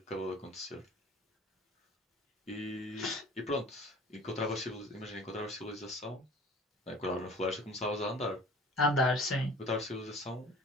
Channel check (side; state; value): both; normal; correlation 0.45